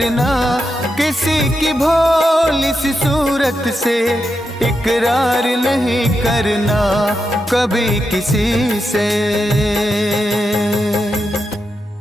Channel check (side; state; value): both; normal; correlation 0.86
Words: किसी की भोली सी सूरत से इकरार नहीं करना कभी किसी से।